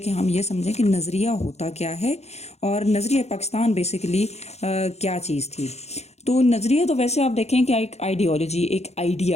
ہم یہ سمجھیں کہ نظریہ ہوتا کیا ہے اور نظریہ پاکستان بیسیکلی کیا چیز تھی۔ تو نظریہ تو ویسے آپ دیکھیں کہ ایک آئیڈیالوجی، ایک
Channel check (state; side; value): late; right; 0.31 ms